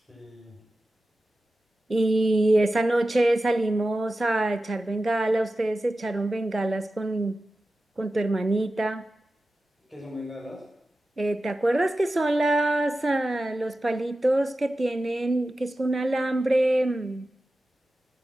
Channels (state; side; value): normal; both; correlation 0.94